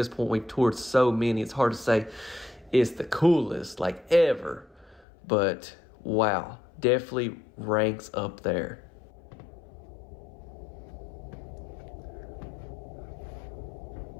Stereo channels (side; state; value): right; drops out; at 5.1 s